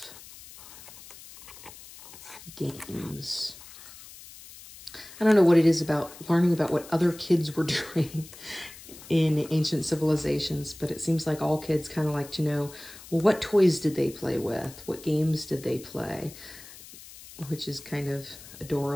games. I don't know what it is about learning about what other kids were doing in ancient civilizations, but it seems like all kids kind of like to know, well, what toys did they play with? What games did they play? Which is kind of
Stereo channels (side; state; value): left; noise; hiss, 18 dB below the sound